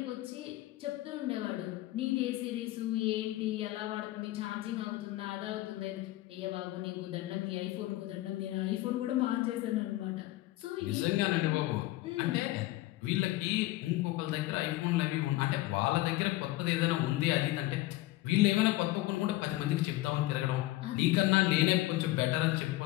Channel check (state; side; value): quieter; right; 17.4 dB